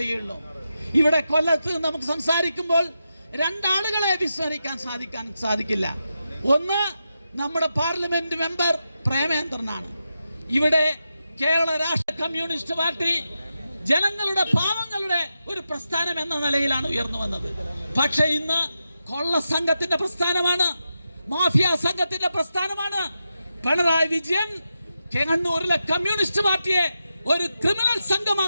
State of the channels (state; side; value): inverted; both; correlation -0.88